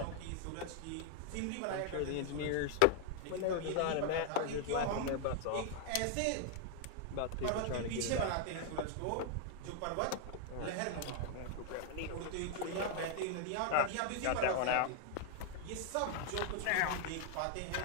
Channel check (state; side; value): different; both; correlation 0.00